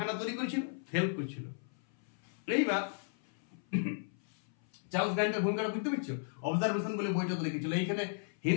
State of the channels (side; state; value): right; silent; 54 dB below the other